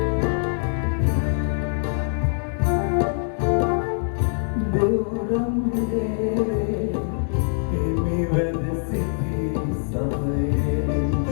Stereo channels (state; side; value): silent; right; digital silence